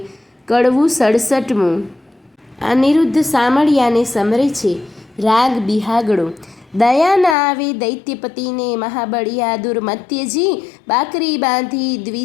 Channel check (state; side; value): drops out; right; at 7.4 s